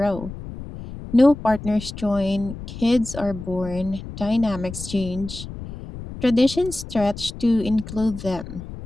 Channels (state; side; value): noise; left; rumble, 11 dB below the sound